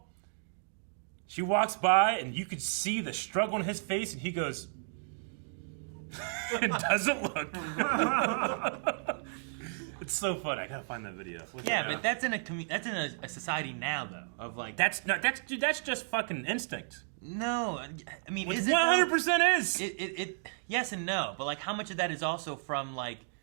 She walks by, and you could see the struggle on his face, and he goes, and doesn't look. It's so funny. I gotta find that video. But that's in a society now though of that's just fucking instinct. No, I mean, 100% is. It yes and no, but how much of that is also from I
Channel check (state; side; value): silent; left; digital silence